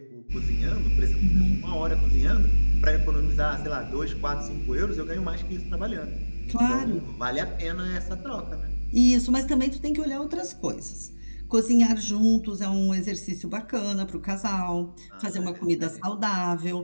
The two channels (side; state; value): both; inverted; correlation -1.00